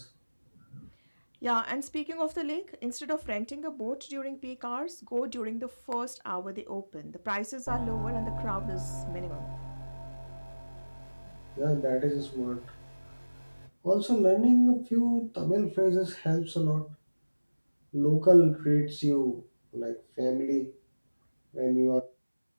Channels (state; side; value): inverted; both; correlation -1.00